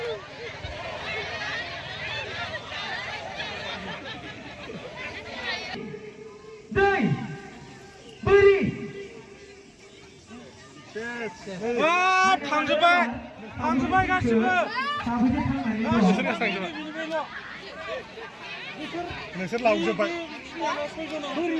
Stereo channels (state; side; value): identical; both; correlation 1.00